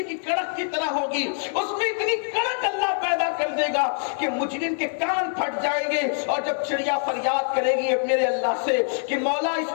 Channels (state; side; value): silent; right; 61 dB below the other